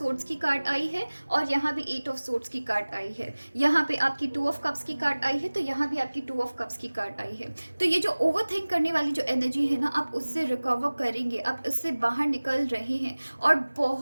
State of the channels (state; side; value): inverted; both; correlation -1.00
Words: की कार्ड आई है, और यहाँ भी 8 ऑफ सोर्ड्स की कार्ड आई है। यहाँ पे आपकी 2 ऑफ कप्स की कार्ड आई है, तो यहाँ भी आपकी 2 ऑफ कप्स की कार्ड आई है। तो ये जो ओवर थिंक करने वाली जो एनर्जी है ना, आप उससे रिकवर करेंगे, आप उससे बाहर निकल रहे हैं। और